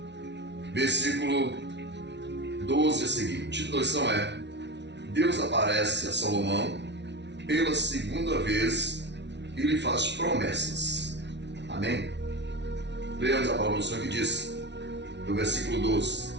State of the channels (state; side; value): late; left; 0.51 ms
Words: versículo 12 a seguir. O título da lição é: Deus aparece a Salomão pela segunda vez e lhe faz promessas. Amém? Leamos a palavra do Senhor que diz, no versículo 12: